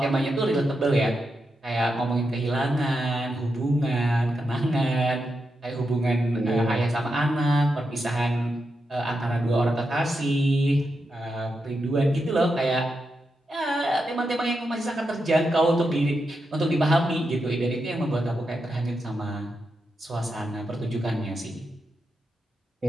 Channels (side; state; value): both; normal; correlation 0.86